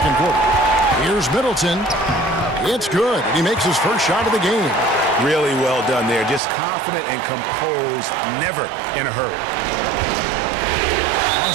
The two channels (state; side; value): drops out; left; at 6.4 s